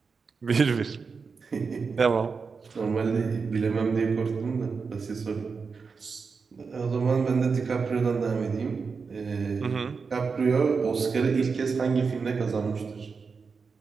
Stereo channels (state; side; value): quieter; left; 5.1 dB